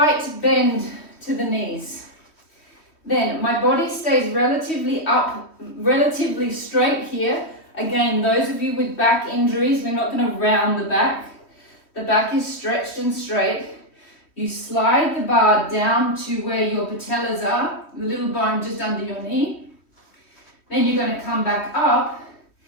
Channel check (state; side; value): late; right; 3.1 ms